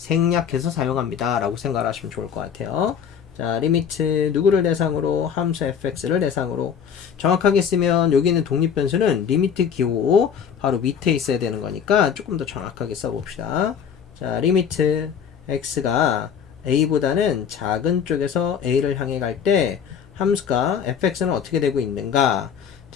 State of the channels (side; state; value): right; quieter; 7.6 dB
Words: 사용합니다 라고 생각을 하시면 좋을 것 같아요. 자, 리미트 누구를 대상으로? 함수 fx를 대상으로. 정확하게 쓰면 여기 있는 독립변수는 리미트 기호 바로 밑에 있어야 되는 거니까 조금 더 정확하게 써봅시다. 자, 리미트 x가 a보다는 작은 쪽에서 a를 향해 갈 때 함수가 fx는 어떻게 되고 있는가?